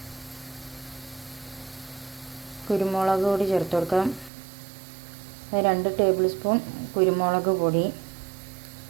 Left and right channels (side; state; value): left; drops out; at 4.3 s